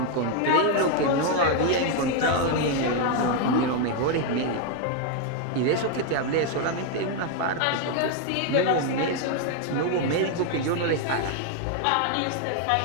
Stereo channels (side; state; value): both; different; correlation 0.00